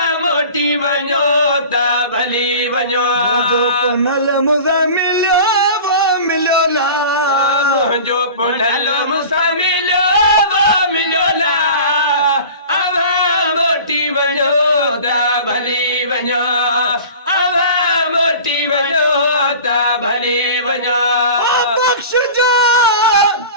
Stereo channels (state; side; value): inverted; both; correlation -0.39